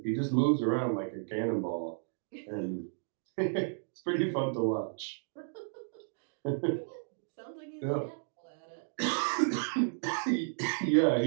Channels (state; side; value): silent; left; digital silence